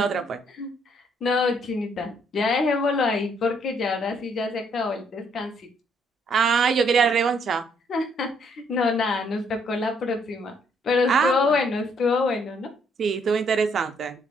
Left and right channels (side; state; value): both; normal; correlation 0.68